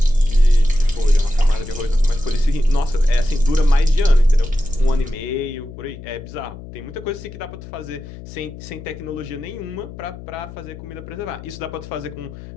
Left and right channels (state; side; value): noise; left; hum, 14 dB below the sound